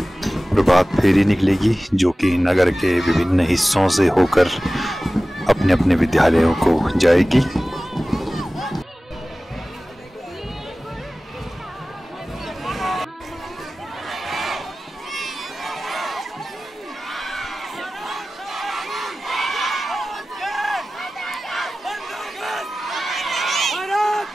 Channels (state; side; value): normal; both; correlation 0.97